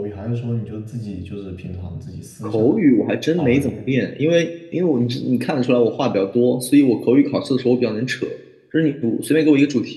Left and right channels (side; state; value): both; identical; correlation 1.00